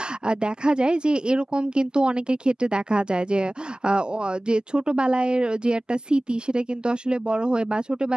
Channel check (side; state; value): both; normal; correlation 0.98